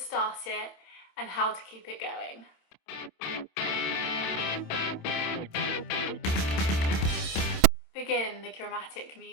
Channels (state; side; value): late; right; 27 ms